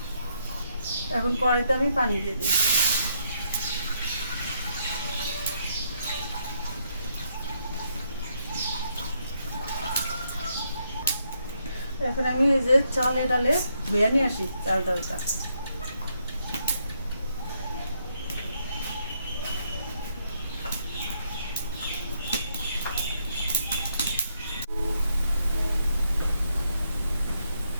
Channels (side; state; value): both; inverted; correlation -0.76